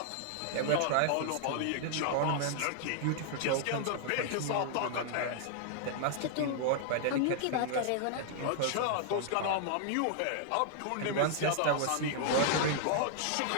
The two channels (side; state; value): both; different; correlation -0.01